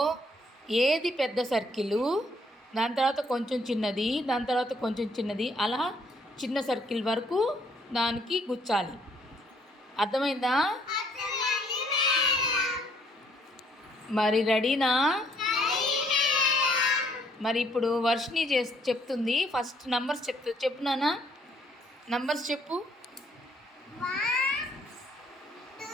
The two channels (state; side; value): normal; both; correlation 0.66